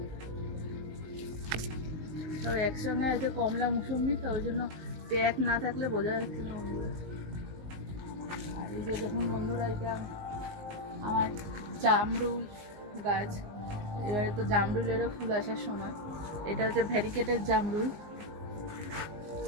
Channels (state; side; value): late; left; 19 ms